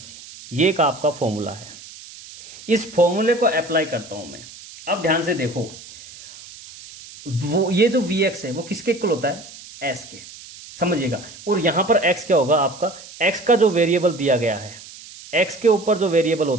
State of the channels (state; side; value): noise; right; hiss, 17 dB below the sound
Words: ये एक आपका फॉर्मूला है। इस फॉर्मूले को अप्लाई करता हूं मैं। अब ध्यान से देखो, वो ये जो Vx है वो किसके इक्वल होता है? S के, समझिएगा। और यहां पर x क्या होगा आपका? x का जो वेरिएबल दिया गया है, x के ऊपर जो वेरिएबल